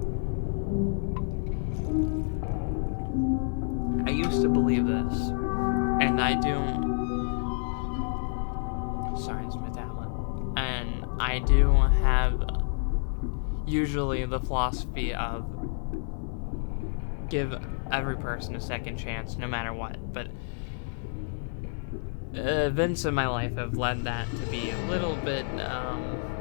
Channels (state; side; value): silent; right; digital silence